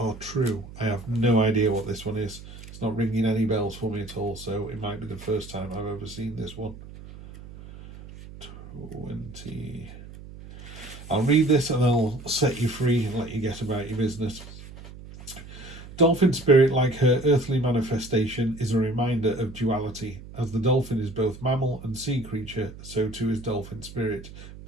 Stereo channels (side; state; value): right; noise; hum, 15 dB below the sound